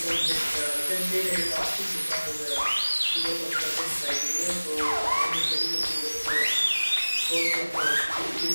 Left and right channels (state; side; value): inverted; both; correlation -1.00